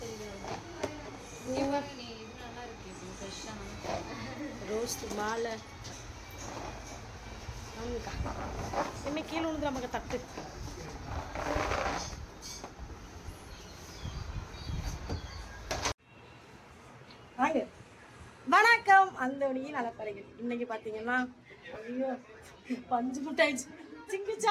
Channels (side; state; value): both; identical; correlation 1.00